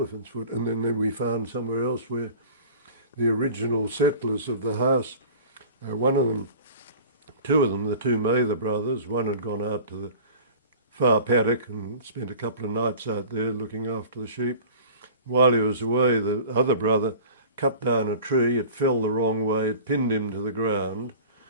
foot. And then we found somewhere else where the original settlers of the house, one of them, two of them, the two Mather brothers, one had gone out to the far paddock and spent a couple of nights out there looking after the sheep. While he was away, the other brother cut down a tree, it fell the wrong way, it pinned him to the ground.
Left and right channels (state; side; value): inverted; both; correlation -0.42